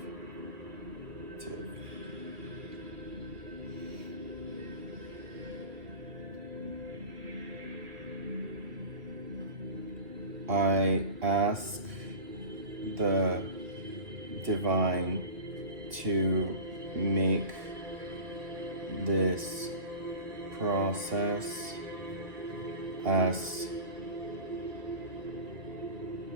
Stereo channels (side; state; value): left; late; 2.3 ms